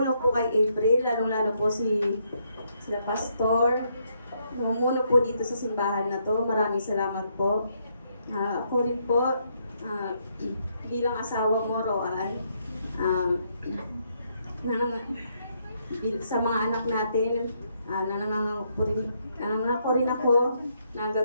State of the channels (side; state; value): both; inverted; correlation -0.75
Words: po kay April, lalong-lalo po sila pastor. Numuno po dito sa simbahan na to. Maraming salamat po. Ako rin po, bilang asawa mo, Roan, sa mga anak natin, nanangako rin ako na